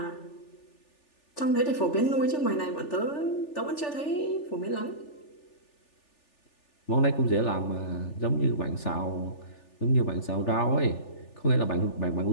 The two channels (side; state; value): right; late; 3.4 ms